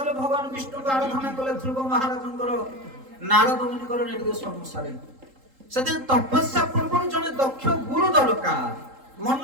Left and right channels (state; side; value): late; left; 3.8 ms